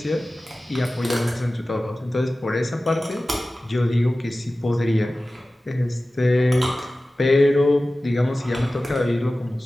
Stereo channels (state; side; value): normal; both; correlation 0.96